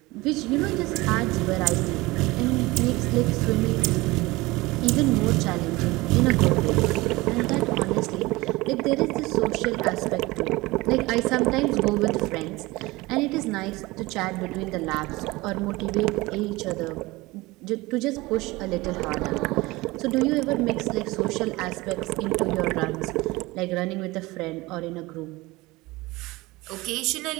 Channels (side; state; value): left; quieter; 21.3 dB